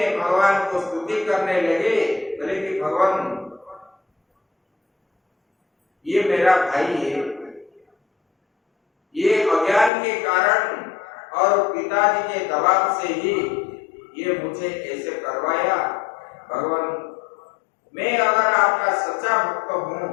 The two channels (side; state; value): right; drops out; at 9.9 s